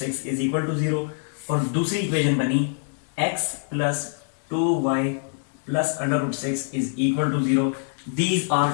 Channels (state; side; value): silent; right; digital silence